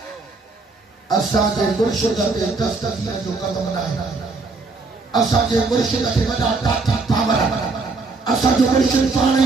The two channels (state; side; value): quieter; left; 3.8 dB